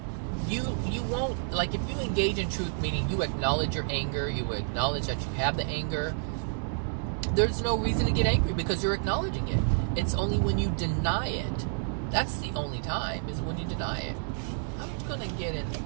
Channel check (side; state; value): left; silent; digital silence